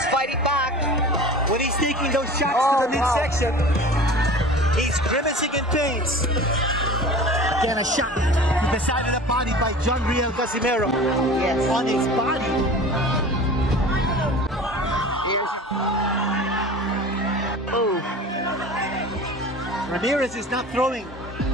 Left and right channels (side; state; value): both; normal; correlation 0.39